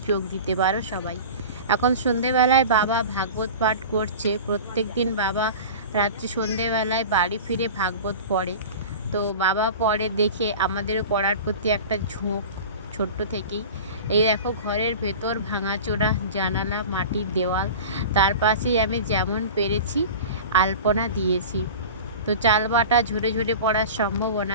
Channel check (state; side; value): inverted; both; correlation -0.34